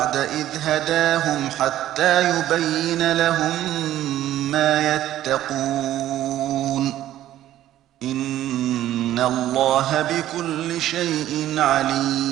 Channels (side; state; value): left; quieter; 13.1 dB